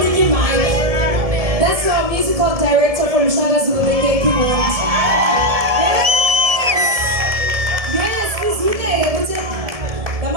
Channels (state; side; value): late; left; 1.7 ms